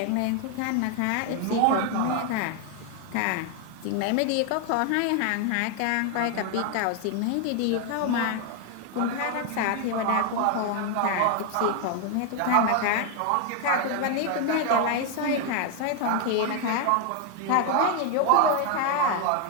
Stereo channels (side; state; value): both; different; correlation 0.01